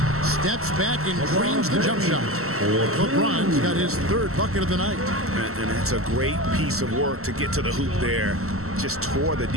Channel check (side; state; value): left; late; 0.63 ms